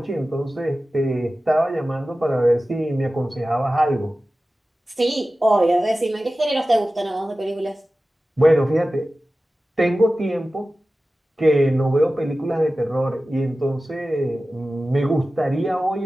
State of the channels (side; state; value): both; normal; correlation 0.95